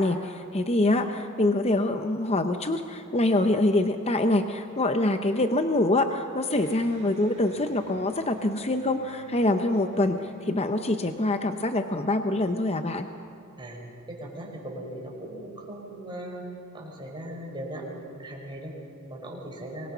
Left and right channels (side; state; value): both; normal; correlation 0.56